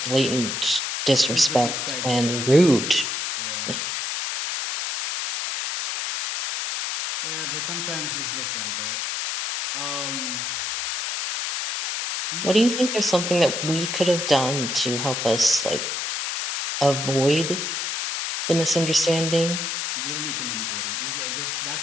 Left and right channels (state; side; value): noise; left; hiss, 2 dB below the sound